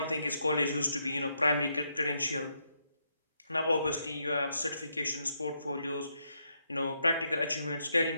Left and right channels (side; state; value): both; inverted; correlation -0.78